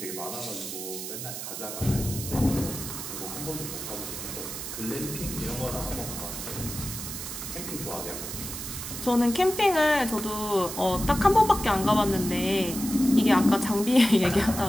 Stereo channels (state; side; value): noise; right; hiss, 7 dB below the sound